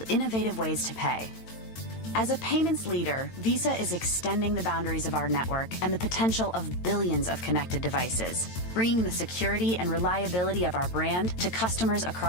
innovative ways to pay. As a payments leader, Visa is extending the boundaries of our network and the potential of billions of connected devices, bringing the security and reliability of our brand to customers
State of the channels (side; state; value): right; late; 8.9 ms